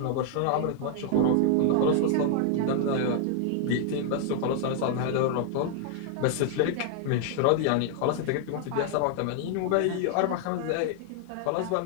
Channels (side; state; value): both; different; correlation 0.00